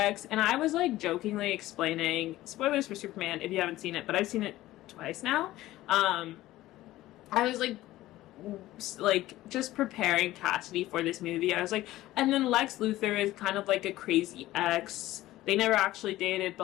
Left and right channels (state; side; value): quieter; right; 16.0 dB